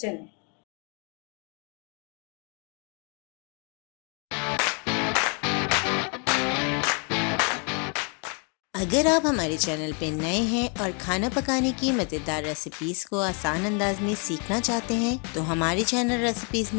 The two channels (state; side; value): quieter; right; 36.8 dB